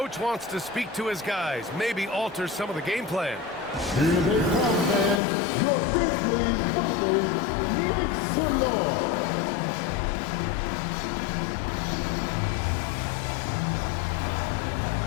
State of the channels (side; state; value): right; drops out; at 5.2 s